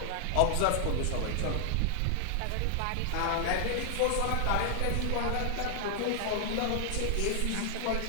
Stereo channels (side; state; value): both; different; correlation 0.00